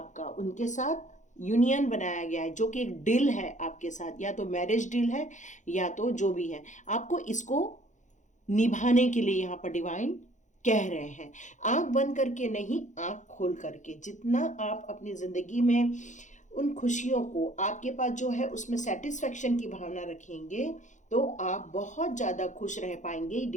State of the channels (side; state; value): right; late; 0.35 ms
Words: उनके साथ यूनियन बनाया गया है, जो कि एक डील है आपके साथ, या तो मैरिज डील है या तो जो भी है। आपको इसको निभाने के लिए यहाँ पर डिवाइन कह रहे हैं, आंख बंद करके नहीं, आंख खोल करके। जितना आप अपनी जिंदगी में उन खुशियों को, आपके पास जो है उसमें सेटिस्फेक्शन की भावना रखेंगे, तो आप बहुत ज्यादा खुश रह पाएंगे।